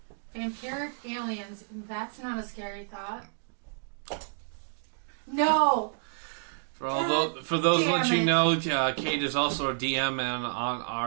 Vampiric aliens. That's not a scary thought. No. For those let you know, Kayde is also a DM on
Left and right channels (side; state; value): left; silent; digital silence